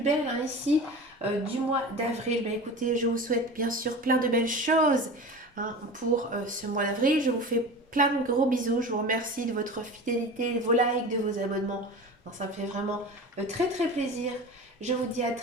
hein, ici du mois d'avril. Ben écoutez, je vous souhaite bien sûr plein de belles choses hein, pour ce mois d'avril. Je vous fais plein de gros bisous. Je vous remercie de votre fidélité, de vos likes, de vos abonnements. Non, ça me fait vraiment très très plaisir. Je vous dis à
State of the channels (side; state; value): both; normal; correlation 0.33